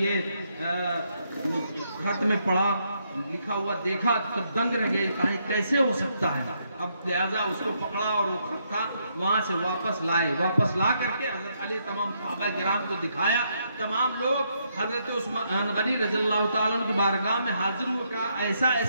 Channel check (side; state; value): both; inverted; correlation -0.76